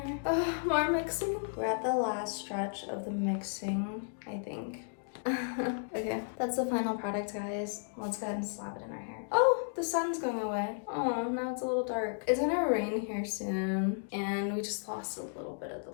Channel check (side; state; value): right; silent; digital silence